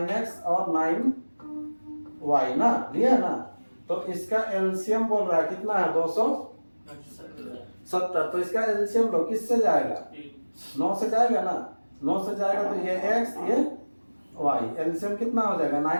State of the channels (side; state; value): both; inverted; correlation -1.00